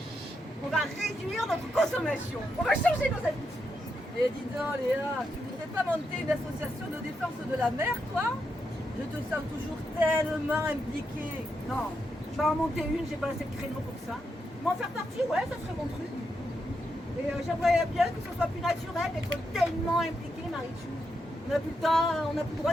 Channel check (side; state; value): both; normal; correlation 0.83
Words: On va réduire notre consommation. On va changer nos habitudes. Et dis donc Léa, tu voudrais pas monter une association de défense de la mer, toi? Je te sens toujours tellement impliquée. Non, je vais en monter une, j'ai pas assez de créneau pour ça. Mais en faire partie, ouais, ça serait mon truc. Et j'aimerais bien que ce soit plus naturel d'être tellement impliqué, Marichou. On n'a plus le temps, on n'a plus le droit